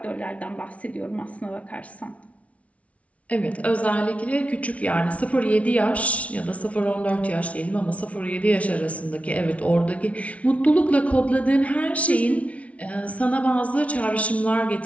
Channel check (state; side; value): late; right; 0.065 ms